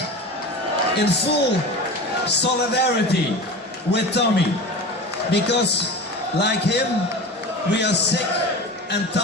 in full solidarity with Tommy, because like him, we are sick and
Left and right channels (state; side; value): normal; both; correlation 0.31